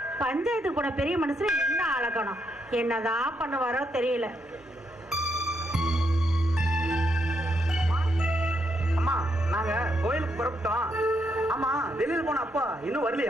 பஞ்சாயத்து கூட பெரிய மனுஷன் என்ன அழகணும், என்னதான் பண்ணுவாரோ தெரியல. அம்மா, நாங்க கோயிலுக்கு புறப்பட்டோம். ஆமா, வெளியில போன அப்பா இன்னும்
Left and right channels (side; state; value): both; normal; correlation 0.78